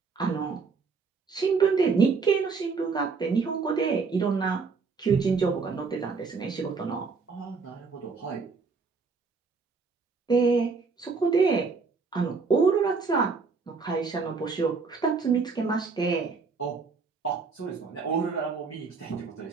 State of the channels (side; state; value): left; quieter; 4.8 dB